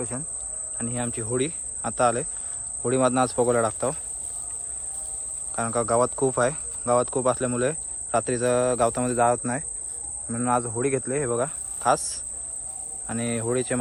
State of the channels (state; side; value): identical; both; correlation 1.00